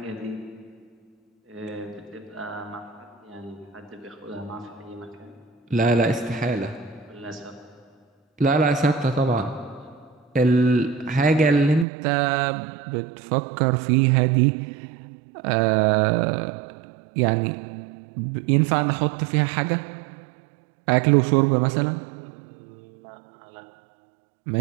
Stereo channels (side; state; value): left; drops out; at 11.9 s